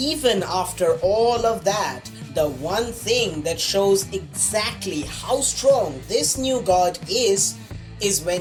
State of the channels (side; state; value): both; identical; correlation 1.00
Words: after all of that, the one thing that shows exactly how strong this new god is when